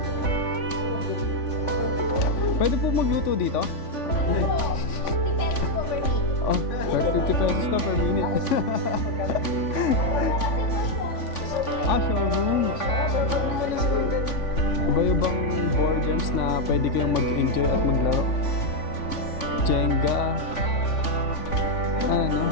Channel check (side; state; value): right; late; 3.5 ms